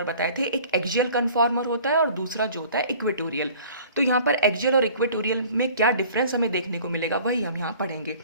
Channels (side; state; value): both; inverted; correlation -0.48